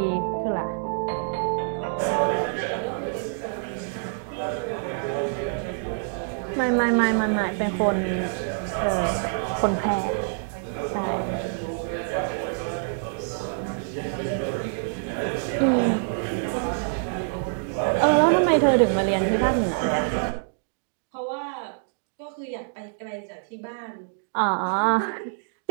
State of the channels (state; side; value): silent; left; digital silence